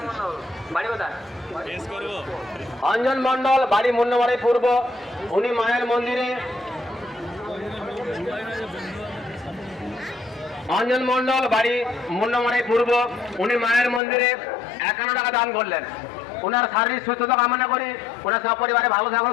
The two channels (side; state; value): right; drops out; at 14.0 s